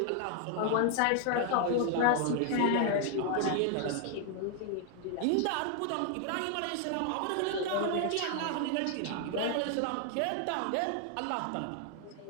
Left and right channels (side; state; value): both; different; correlation 0.00